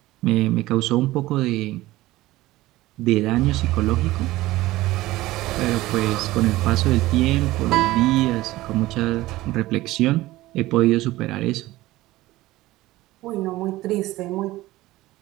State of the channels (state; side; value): quieter; left; 17.6 dB